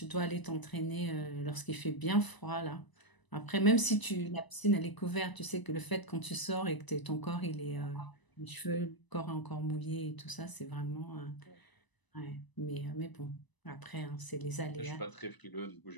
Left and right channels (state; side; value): late; right; 1.0 ms